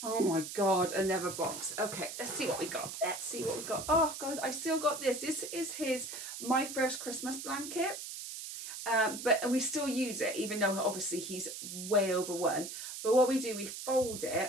Oh my God, another box. Okay, let's see what we got. Let's see what we got. Oh God, I still got this. This is his My First Christmas blanket. But we still use it, even though obviously he's way over 1. But what we do, we fold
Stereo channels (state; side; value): noise; right; hiss, 8 dB below the sound